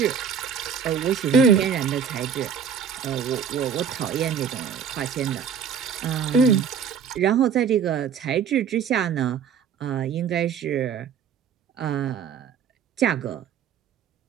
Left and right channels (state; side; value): quieter; left; 7.2 dB